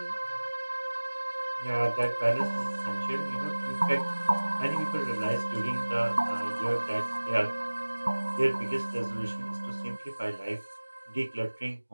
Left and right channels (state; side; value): inverted; both; correlation -1.00